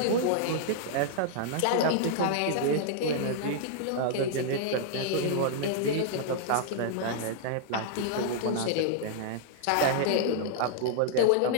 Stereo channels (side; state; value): both; different; correlation -0.01